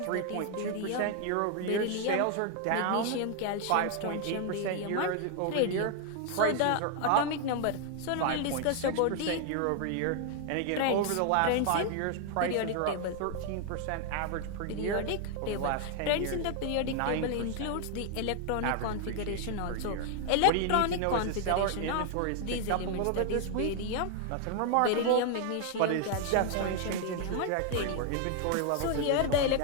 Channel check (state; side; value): different; both; correlation 0.00